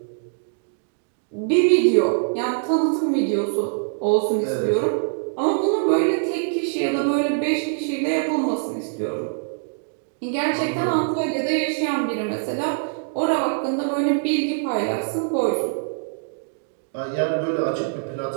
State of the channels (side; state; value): left; silent; digital silence